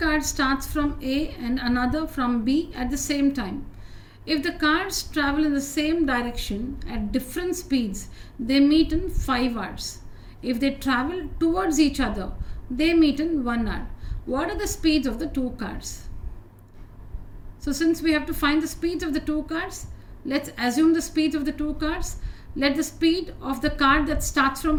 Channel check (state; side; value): identical; both; correlation 1.00